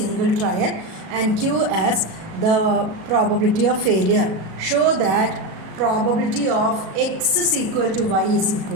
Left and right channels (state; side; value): late; left; 37 ms